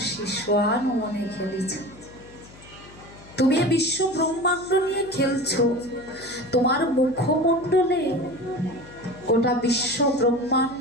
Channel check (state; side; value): noise; left; hum, 21 dB below the sound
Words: শিশোয়ান মনে খেলিছ। তুমি এ বিশ্ব ব্রহ্মাণ্ড নিয়ে খেলছো, তোমার মুখমণ্ডলে গোটা বিশ্ব